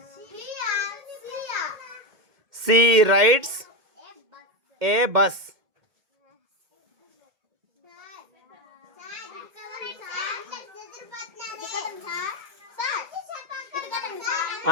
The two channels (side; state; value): left; late; 2.1 ms